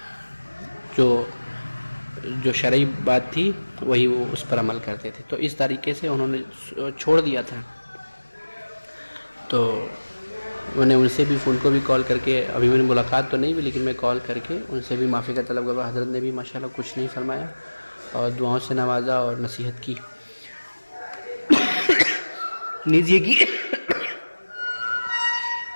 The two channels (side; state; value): both; inverted; correlation -1.00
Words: جو شرعی بات تھی وہی وہ اس پر عمل کرتے تھے۔ تو اس طریقے سے انہوں نے چھوڑ دیا تھا۔ تو میں نے ان سے بھی، ان کو بھی کال کر کے، ابھی میں نے ملاقات تو نہیں ہوئی لیکن میں کال کر کے ان سے بھی معافی کا طلب کرا۔ حضرت نے بھی ماشاءاللہ کچھ نہیں فرمایا اور دعاؤں سے نوازا اور نصیحت کی، نیز یہ کی